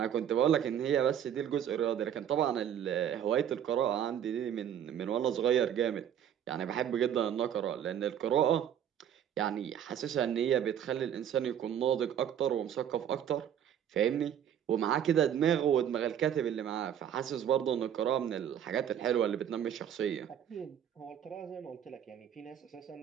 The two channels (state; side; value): quieter; left; 9.5 dB